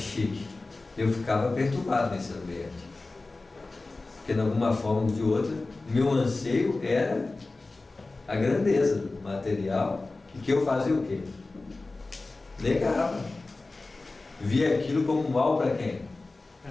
eu ficava perturbado nesse ambiente. Porque de alguma forma ou de outra, meu anseio era a grandeza do material, e que eu fazia o quê? Negava. Via aquilo como mal para quem?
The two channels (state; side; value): quieter; right; 3.3 dB